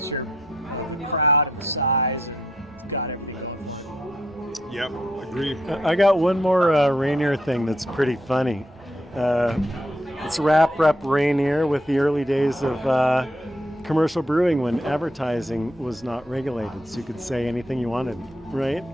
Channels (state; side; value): normal; both; correlation 0.75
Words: of the crowd and the size, and it's got everything going for it. Yep. Agreed. I got one more Rainier thing that's pretty funny. It's rep Rainier with the early days of commercial brewing when advertising was not regulated, so you could say anything you wanted, right?